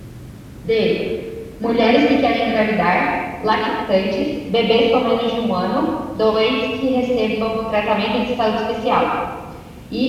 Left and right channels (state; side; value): identical; both; correlation 1.00